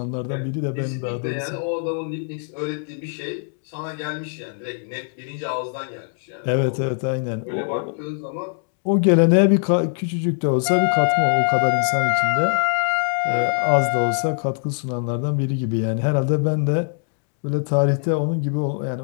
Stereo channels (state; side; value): silent; right; 64 dB below the other